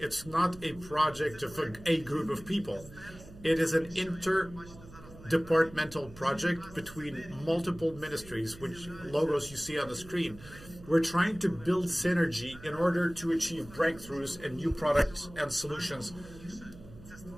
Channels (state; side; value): noise; right; hum, 18 dB below the sound